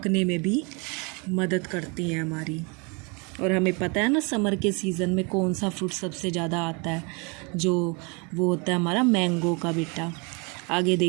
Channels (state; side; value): quieter; left; 31.5 dB